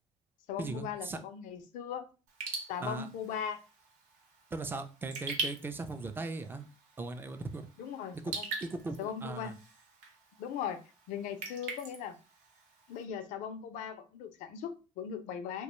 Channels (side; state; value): both; normal; correlation 0.26